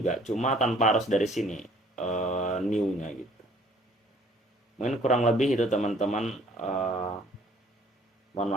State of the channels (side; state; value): both; normal; correlation 0.58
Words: cuma tanpa harus dari sini new-nya gitu. Mungkin kurang lebih itu teman-teman, mohon